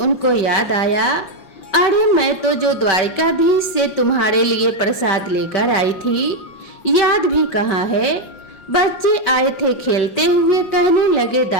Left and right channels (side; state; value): right; late; 5.7 ms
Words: याद आया, अरे मैं तो जो द्वारिकाधीश से तुम्हारे लिए प्रसाद लेकर आई थी, याद भी कहाँ है। बच्चे आए थे खेलते हुए, कहने लगे